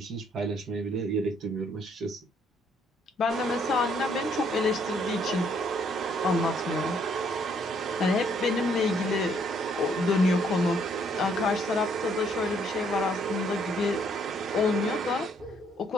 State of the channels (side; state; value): both; normal; correlation 0.68